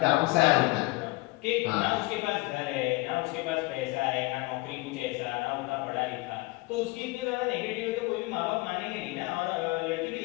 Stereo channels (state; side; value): quieter; right; 22.9 dB